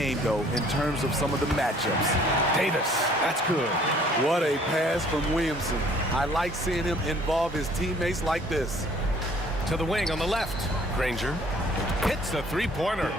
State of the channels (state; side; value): normal; both; correlation 0.57